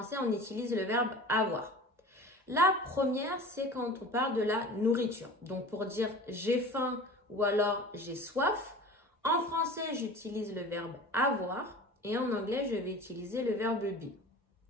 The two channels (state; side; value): normal; both; correlation 0.38